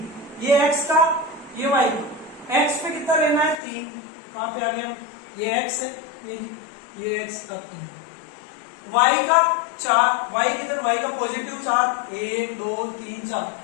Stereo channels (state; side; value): drops out; right; at 3.6 s